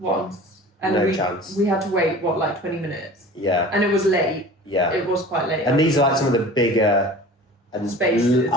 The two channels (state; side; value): normal; both; correlation 0.41